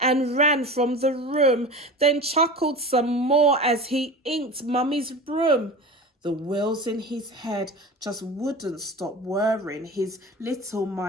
ran from the room, then chuckled some more as he inked Mummy's broom. The wheels in his head just wouldn't stop whirring. His little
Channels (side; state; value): both; normal; correlation 0.33